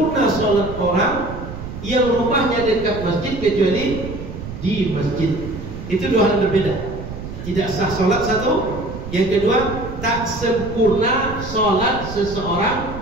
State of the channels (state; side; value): noise; right; rumble, 10 dB below the sound